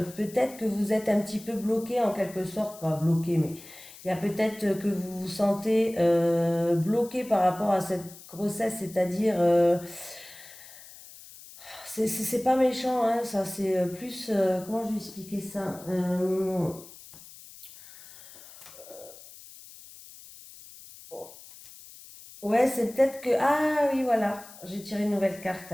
peut-être que vous êtes un petit peu bloqué en quelque sorte, pas bloqué, mais il y a peut-être que vous vous sentez bloqué par rapport à cette grossesse, c'est-à-dire, c'est pas méchant, hein, ça, c'est plus, comment je vais expliquer ça? Ouais, c'est peut-être que, ah oui, voilà, j'ai tiré une nouvelle carte,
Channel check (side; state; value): left; noise; hiss, 18 dB below the sound